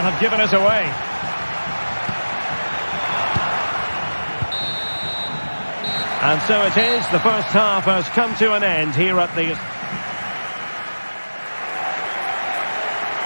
have given us away. And so it is. The first half has come to an end here at the...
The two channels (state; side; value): inverted; both; correlation -1.00